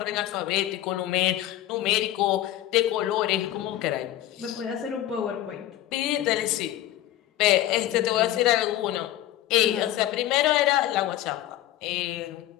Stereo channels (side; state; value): right; quieter; 13.8 dB